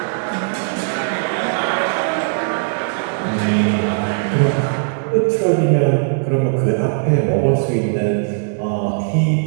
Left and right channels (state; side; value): silent; left; digital silence